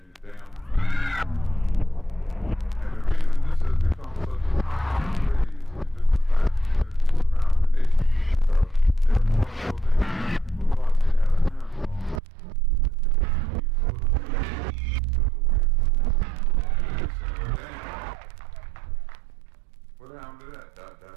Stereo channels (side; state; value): left; drops out; at 12.2 s